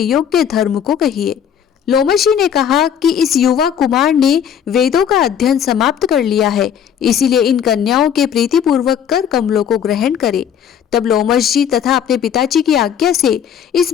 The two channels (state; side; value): quieter; right; 8.6 dB